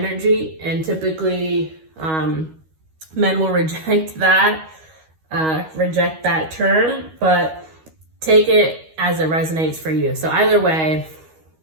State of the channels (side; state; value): left; late; 13 ms